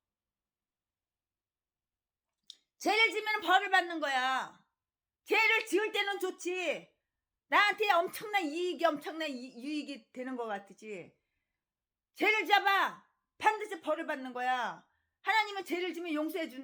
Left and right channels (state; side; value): identical; both; correlation 1.00